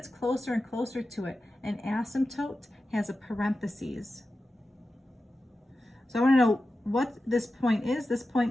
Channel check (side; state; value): both; normal; correlation 0.93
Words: closer and closer to it, an asymptote has a parentheses. So I want to know what this point is. This